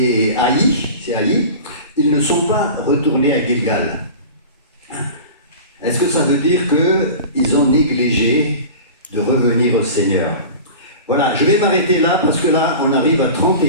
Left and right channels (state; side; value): inverted; both; correlation -0.35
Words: Haï, c'est Haï, ils ne sont pas retournés à Gilgal. Est-ce que ça veut dire qu'ils ont négligé de revenir au Seigneur? Voilà, je vais m'arrêter là parce que là, on arrive à